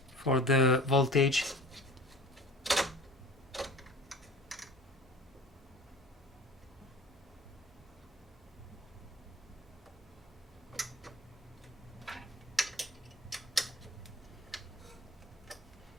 for the voltage.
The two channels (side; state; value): both; normal; correlation 0.43